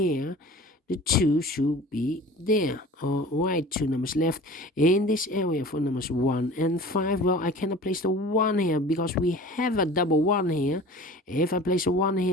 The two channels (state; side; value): normal; both; correlation 0.41